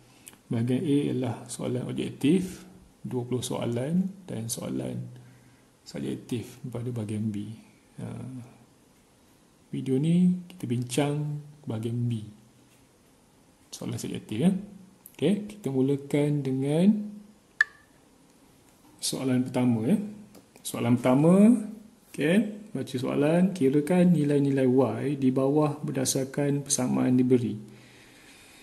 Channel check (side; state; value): both; identical; correlation 1.00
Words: bahagian A ialah soalan objektif 20 soalan dan soalan subjektif pada bahagian B. Video ni kita bincang bahagian B, soalan subjektif. Kita mulakan dengan soalan pertama. Soalan pertama, baca soalan, kirakan nilai-nilai Y di bawah berdasarkan persamaan diberi.